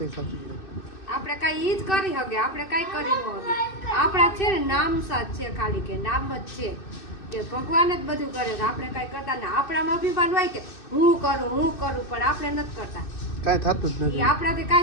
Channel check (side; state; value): right; late; 2.6 ms